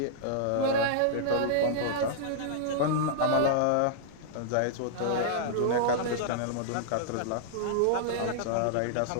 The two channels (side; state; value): both; different; correlation -0.02